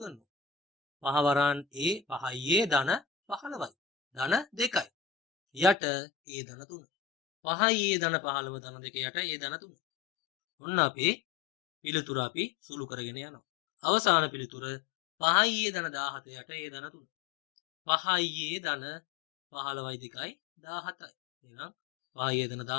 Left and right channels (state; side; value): drops out; right; at 5.8 s